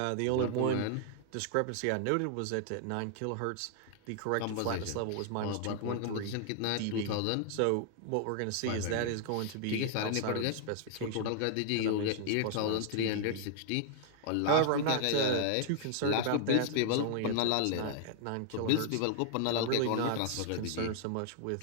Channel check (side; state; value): both; different; correlation 0.00